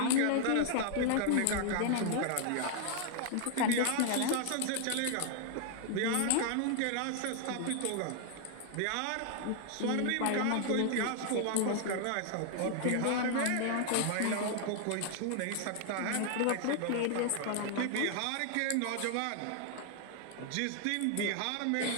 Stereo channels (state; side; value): different; both; correlation 0.00